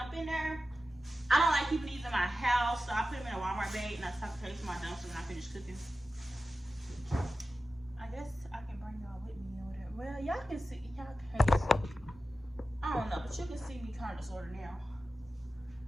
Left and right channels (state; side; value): normal; both; correlation 0.93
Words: in there. I don't like keeping these in my house, so I put them in a Walmart bag and I tuck the to my dumpster when I finish cooking. I guess I can bring y'all with me or whatever. Well, y'all can see, y'all can't see. I don't know, but you can see me kind of sort of now.